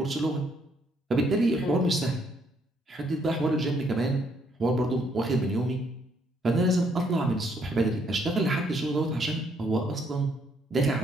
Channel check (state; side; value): normal; both; correlation 0.70